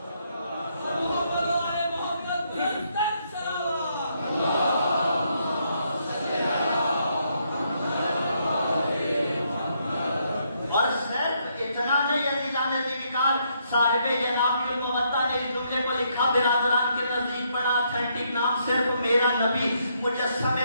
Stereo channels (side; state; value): both; inverted; correlation -0.74